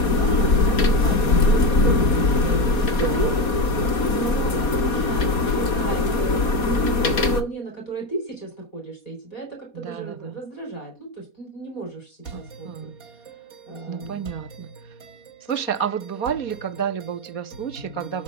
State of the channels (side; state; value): right; late; 4.2 ms